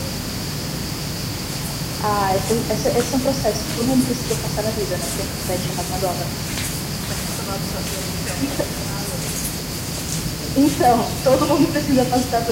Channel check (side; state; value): both; identical; correlation 1.00